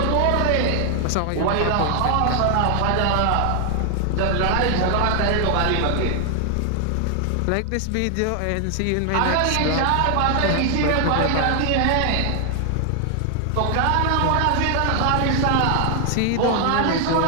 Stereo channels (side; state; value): both; different; correlation 0.00